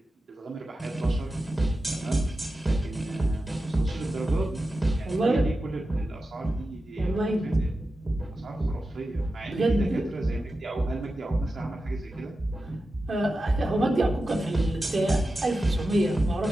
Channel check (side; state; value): both; normal; correlation 0.92